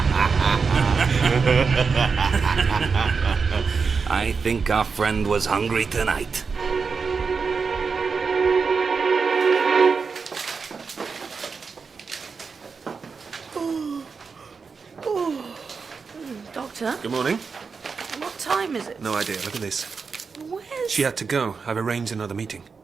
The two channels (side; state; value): left; quieter; 5.2 dB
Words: I think our friend was hungry tonight. Doctor, Good morning. what time is it? No idea. Look at this. Where's... She had to go. I've arranged another meeting.